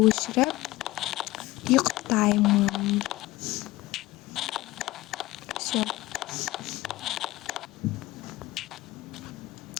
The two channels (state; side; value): quieter; right; 18.3 dB